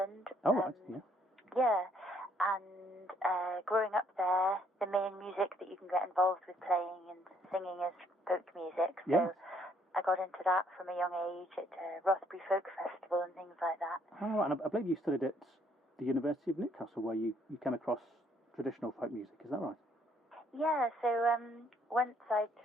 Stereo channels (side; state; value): both; normal; correlation 0.67